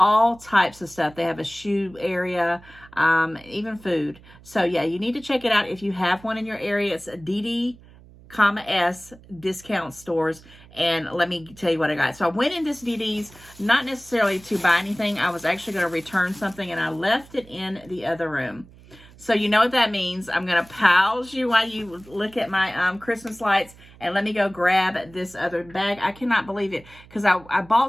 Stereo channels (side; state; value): right; noise; hum, 23 dB below the sound